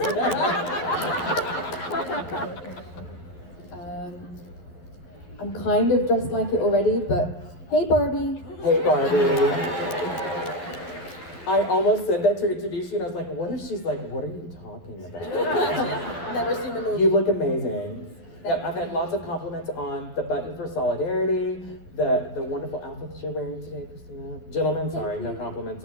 I'm kind of dressed like it already, but hey Barbie. Hey Barbie. I almost said that to introduce you, and I was like, what if she's like, what are you talking about? Never seen the movie. You look amazing. Yeah, I've had lots of compliments on the button for solidarity, the wonderful outfit that you're wearing today, Christina. Gentlemen, sorry, no compliments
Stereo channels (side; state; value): right; late; 12 ms